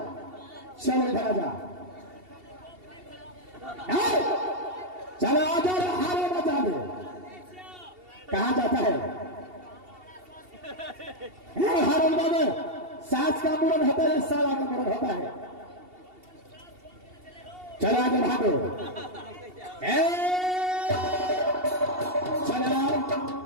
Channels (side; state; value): left; late; 2.7 ms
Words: चलो इधर आजा। चलो आजा हारो बचा दे। कहा जाता है हारो बाबू? सास का मुरन होता है, साला का मुरन होता है। चलो आजा बहादुर। चला